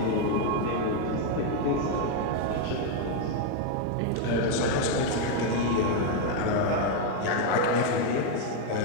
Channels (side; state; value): both; different; correlation 0.01